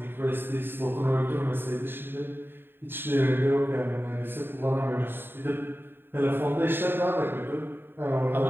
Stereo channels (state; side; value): late; left; 0.10 ms